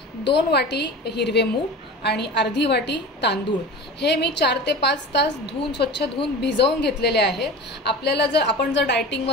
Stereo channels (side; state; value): both; normal; correlation 0.34